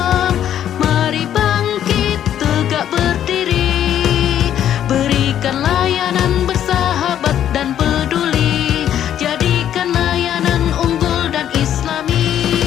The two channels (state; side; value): quieter; right; 10.5 dB